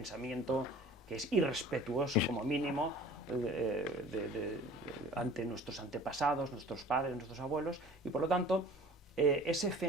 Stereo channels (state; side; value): normal; both; correlation 0.45